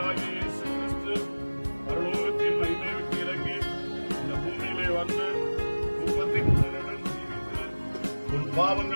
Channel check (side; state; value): both; inverted; correlation -1.00